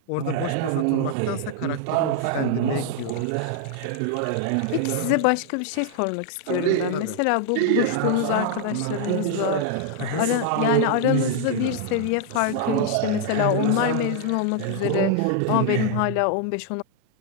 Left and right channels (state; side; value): different; both; correlation 0.00